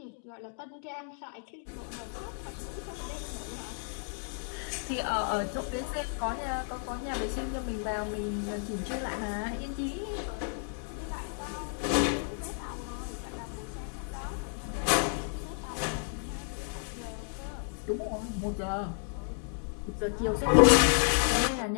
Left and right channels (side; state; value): right; silent; 56 dB below the other